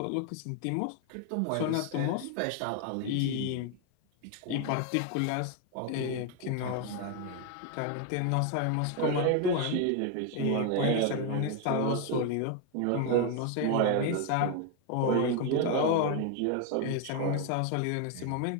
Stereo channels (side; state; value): both; different; correlation 0.01